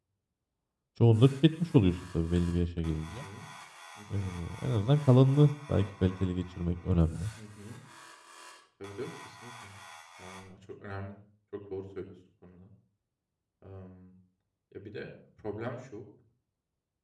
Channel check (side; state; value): both; identical; correlation 1.00